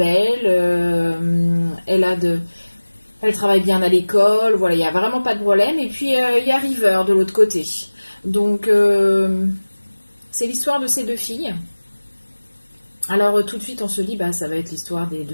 elle travaille bien à l'école, voilà, il n'y a vraiment pas de problème. Et puis il y a River de l'autre côté. Donc, c'est l'histoire de ces deux filles. Alors, tout de suite, on se dit, bah, ça va être l'histoire des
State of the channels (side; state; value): both; inverted; correlation -1.00